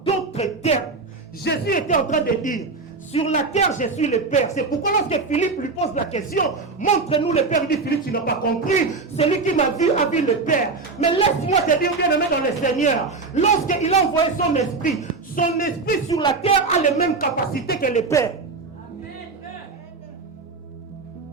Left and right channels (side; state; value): left; quieter; 4.1 dB